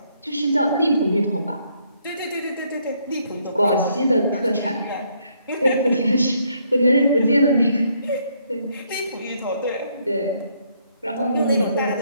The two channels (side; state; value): both; inverted; correlation -0.71